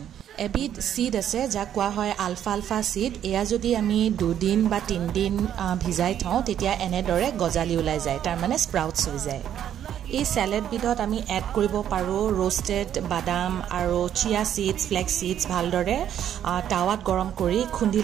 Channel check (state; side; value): quieter; left; 10.1 dB